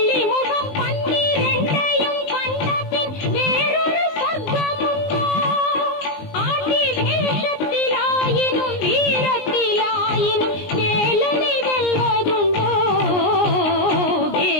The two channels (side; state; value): right; late; 19 ms